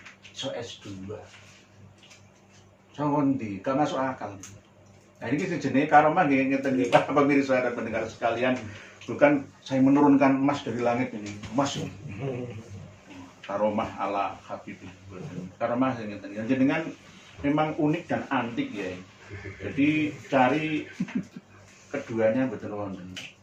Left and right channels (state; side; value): identical; both; correlation 1.00